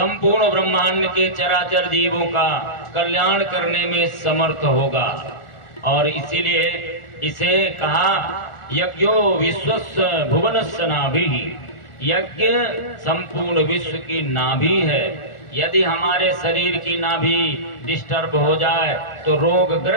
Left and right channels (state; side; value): late; right; 1.4 ms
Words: ब्रह्मांड के चराचर जीवों का कल्याण करने में समर्थ होगा। और इसीलिए इसे कहा यज्ञो विश्वस्य भुवनस्य नाभिः। यज्ञ संपूर्ण विश्व की नाभि है। यदि हमारे शरीर की नाभि डिस्टर्ब हो जाए तो